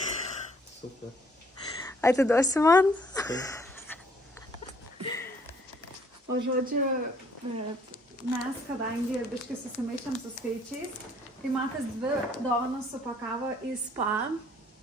Super. Atiduosi man? O žodžiu, mes, kadangi biškai susimaišėm su skaičiais, tai Matas 2 dovanas supakavo į spa,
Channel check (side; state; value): both; normal; correlation 0.62